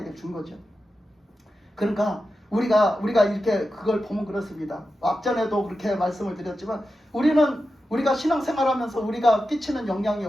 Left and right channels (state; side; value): normal; both; correlation 0.91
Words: 준 거죠. 그러니까 우리가 이렇게 그걸 보면 그렇습니다. 앞전에도 그렇게 말씀을 드렸지만 우리가 신앙생활하면서 우리가 끼치는 영향이